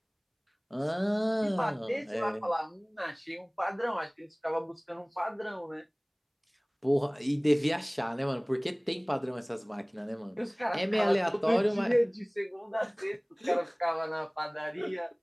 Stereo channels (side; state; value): both; identical; correlation 1.00